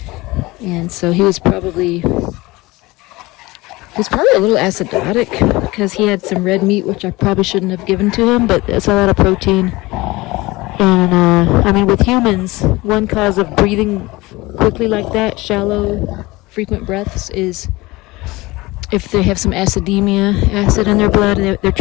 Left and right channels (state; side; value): quieter; right; 21.2 dB